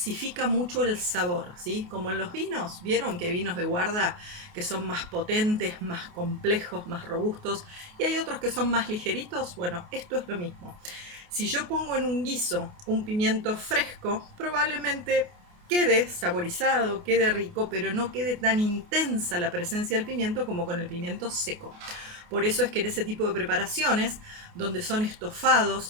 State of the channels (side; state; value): left; late; 28 ms